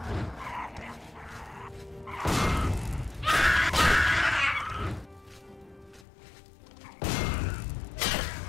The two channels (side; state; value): right; drops out; at 6.1 s